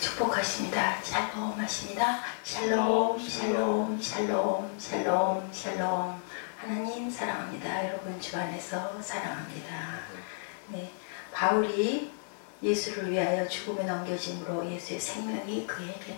축복하십니다. 샬롬 하십니다. 샬롬, 샬롬, 샬롬, 샬롬, 샬롬. 하나님 사랑합니다. 여러분 주 안에서 사랑합니다. 네, 바울이 예수를 위하여 죽음에 넘겨짐으로 예수의 생명이 그에게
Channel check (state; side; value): silent; right; digital silence